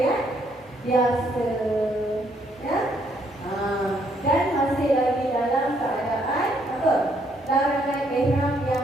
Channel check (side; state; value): both; normal; correlation 0.70